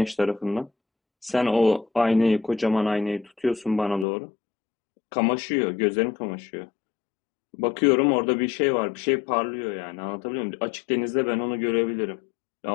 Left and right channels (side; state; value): right; drops out; at 4.0 s